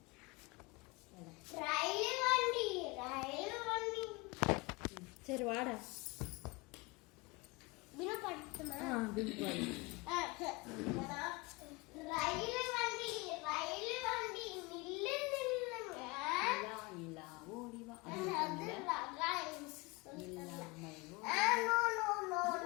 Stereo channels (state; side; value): quieter; right; 25.7 dB